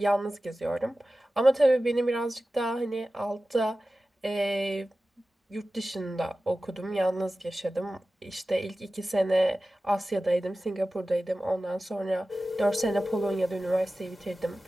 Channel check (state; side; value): normal; both; correlation 0.95